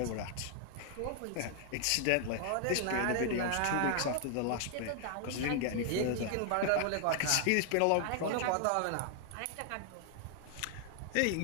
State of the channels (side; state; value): both; different; correlation 0.00